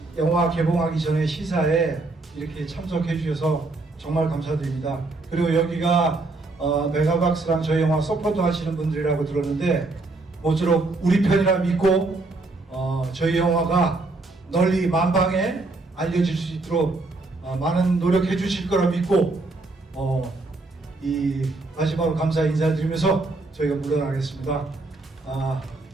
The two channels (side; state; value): left; quieter; 3.3 dB